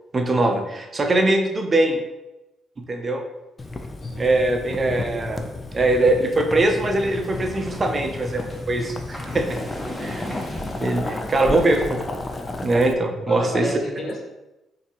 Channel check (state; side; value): normal; both; correlation 0.80